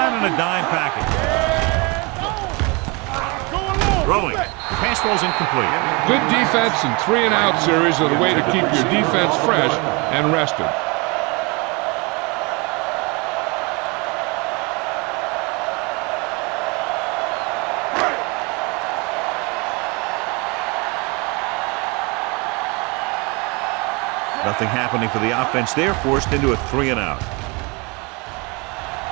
in a dime package. Throwing. Pass ball's incomplete. Good defense and 3-and-out series are the way to keep your defense fresh and rested. Nothing happening for the offense there, forced into a 3-and-out.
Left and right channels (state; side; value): quieter; left; 28.6 dB